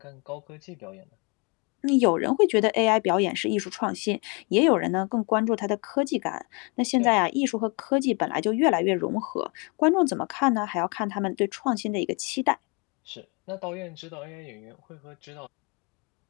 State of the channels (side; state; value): right; quieter; 30.5 dB